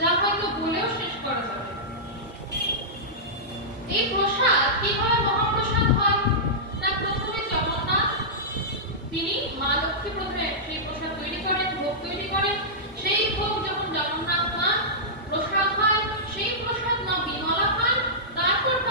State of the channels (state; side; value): normal; both; correlation -0.14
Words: হয়তো বলেও শেষ করা যাবে। এই প্রসাদ কিভাবে মহাপ্রসাদ হয়? না, প্রথমে জগন্নাথ তিনি, মা লক্ষ্মী প্রথমে সেই প্রসাদ তৈরি করেন, ভোগ তৈরি করেন। সেই ভোগ যখন জগন্নাথ পান, প্রসাদ হয়, সেই প্রসাদ মা বিমলা পান, তারপর